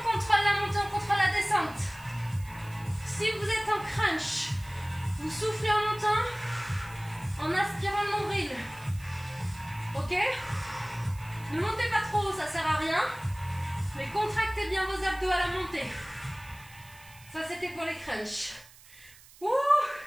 contrôle la montée, on contrôle la descente. Si vous êtes en crunch, vous soufflez en montant, en aspirant le nombril. Ok? Ne montez pas trop haut, ça sert à rien. Mais contractez bien vos abdos à la montée. Ça, c'était pour les crunchs. Ouh!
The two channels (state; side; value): noise; right; hiss, 22 dB below the sound